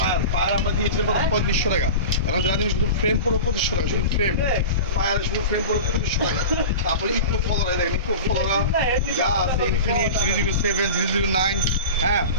আমরা দিয়েছিলাম 3500 টাকা, এখন যারা দিন শুধু ফ্রেম পড়ো 2500 টাকা, শুধু ফ্রেম শুধু ফ্রেম পড়ো 2500 টাকা। তারপরে ইকো ফলোরা, দেখেন ইকো ফলোরা যা আছে, ইনফিনিট 007, 009, হ্যাঁ,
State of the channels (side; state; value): both; inverted; correlation -0.31